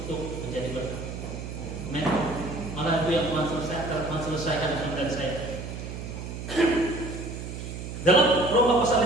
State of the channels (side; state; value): right; noise; hum, 8 dB below the sound